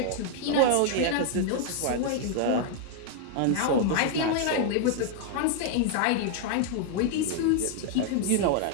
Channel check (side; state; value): both; different; correlation 0.00